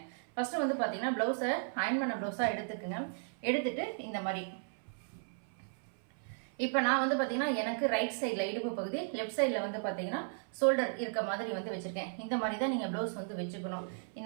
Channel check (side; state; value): left; silent; 54 dB below the other